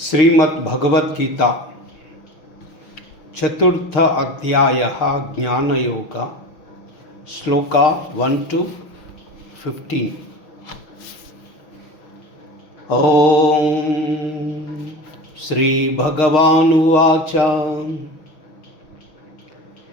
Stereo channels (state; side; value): late; right; 6.2 ms